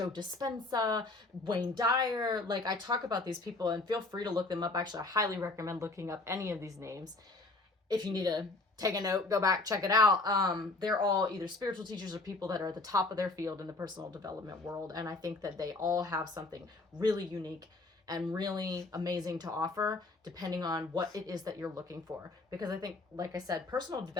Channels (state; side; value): quieter; right; 3.1 dB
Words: Dispenza, Wayne Dyer. Like, I talk about these people, and feel free to look them up. Actually, I highly recommend looking up any of these names. If you need to take a note, go back, check it out. They're all either spiritual teachers or people that are at the top of their field in the personal development world. And I think that they all have something really unique and really amazing to offer, depending on what it is that you're looking for. Because I think, like I said, personal